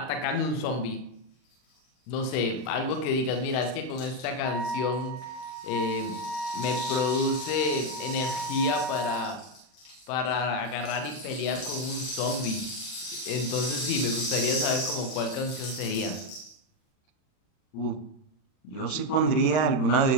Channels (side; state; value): right; late; 39 ms